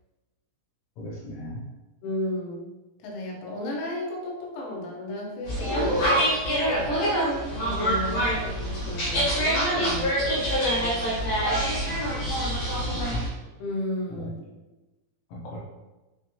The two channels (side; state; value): right; late; 18 ms